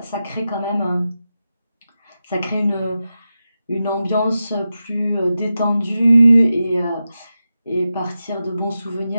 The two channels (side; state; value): both; inverted; correlation -0.91